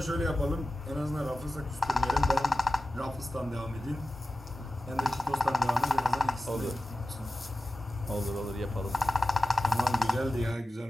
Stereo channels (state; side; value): normal; both; correlation 0.94